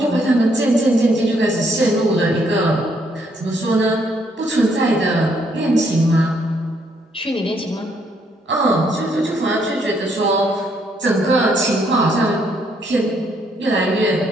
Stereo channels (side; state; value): both; normal; correlation 0.71